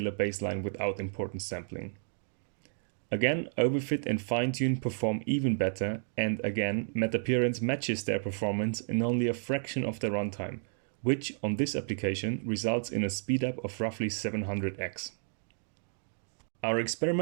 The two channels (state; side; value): silent; left; digital silence